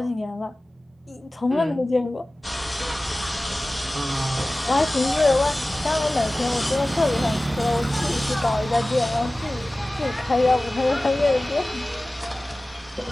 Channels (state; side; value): normal; both; correlation 0.97